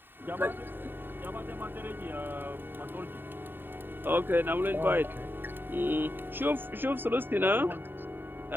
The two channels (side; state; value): left; late; 0.095 ms